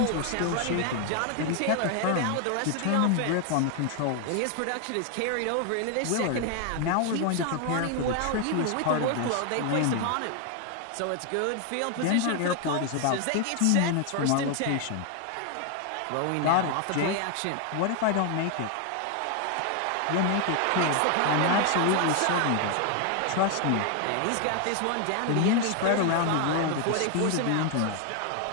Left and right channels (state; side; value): different; both; correlation 0.00